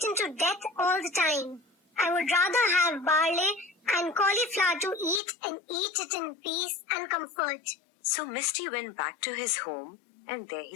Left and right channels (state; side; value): drops out; right; at 5.2 s